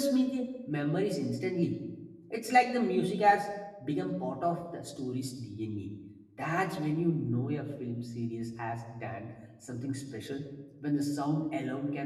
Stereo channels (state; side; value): identical; both; correlation 1.00